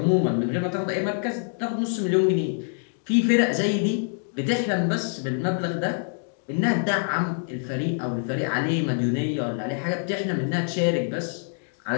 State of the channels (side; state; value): right; silent; 60 dB below the other